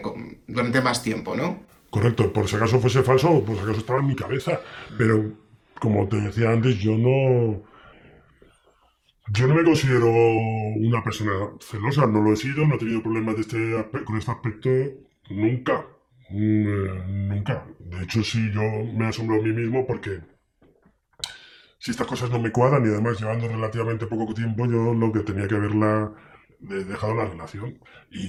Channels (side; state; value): both; identical; correlation 1.00